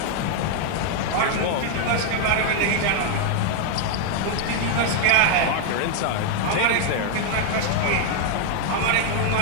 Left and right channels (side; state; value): both; different; correlation 0.00